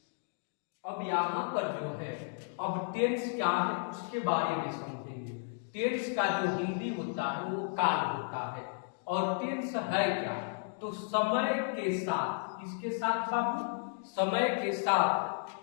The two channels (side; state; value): right; silent; digital silence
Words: अब यहाँ पर जो है, अब टेंस क्या है उसके बारे में समझेंगे। टेंस का जो हिंदी होता है वो काल होता है, और टेंस है क्या, तो समय के साथ, किसके साथ बाबू, समय के साथ